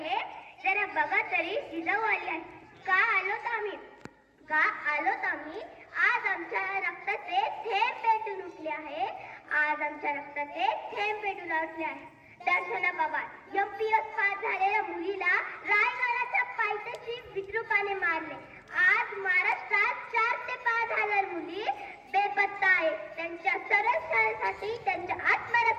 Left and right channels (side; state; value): both; identical; correlation 1.00